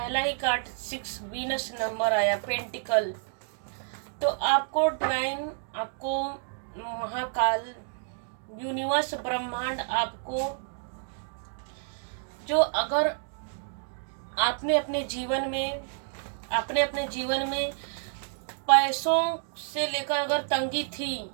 ही कार्ड 6 वीनस नंबर आया, पेंटिकल। तो आपको डिवाइन, आपको महाकाल, यूनिवर्स, ब्रह्मांड आपको जो अगर आपने अपने जीवन में पैसों से लेकर अगर तंगी थी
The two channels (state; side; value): silent; left; digital silence